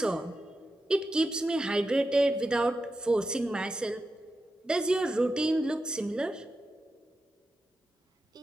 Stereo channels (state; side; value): normal; both; correlation 0.89